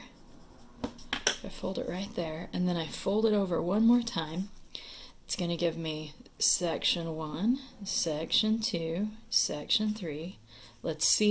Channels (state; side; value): identical; both; correlation 1.00